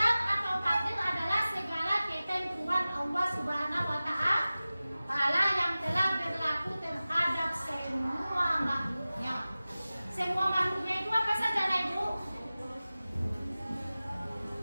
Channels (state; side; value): inverted; both; correlation -0.97